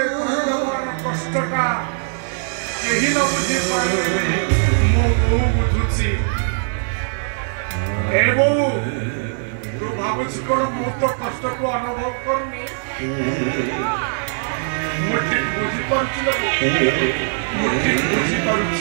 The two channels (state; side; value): silent; left; digital silence